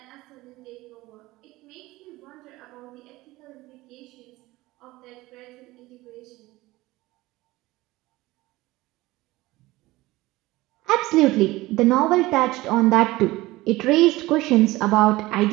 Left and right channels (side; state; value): left; quieter; 19.2 dB